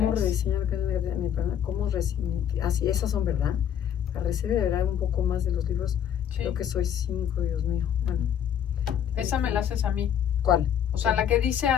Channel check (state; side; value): quieter; right; 9.2 dB